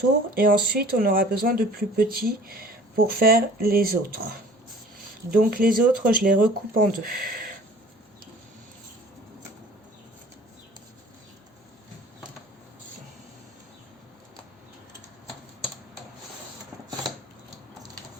Et ensuite, on aura besoin de plus petits pour faire les autres. Donc les autres, je les recoupe en deux.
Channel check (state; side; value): normal; both; correlation 0.48